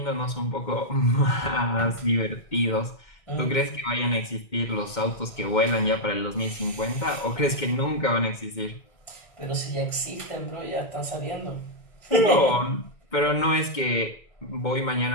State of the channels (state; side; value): late; right; 2.1 ms